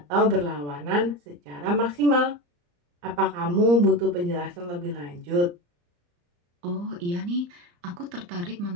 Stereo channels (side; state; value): left; late; 34 ms